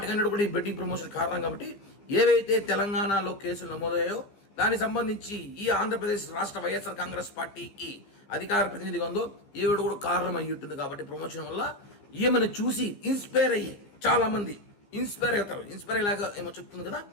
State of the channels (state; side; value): late; right; 15 ms